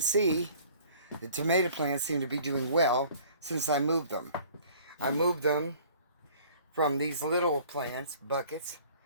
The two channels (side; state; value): both; inverted; correlation -0.52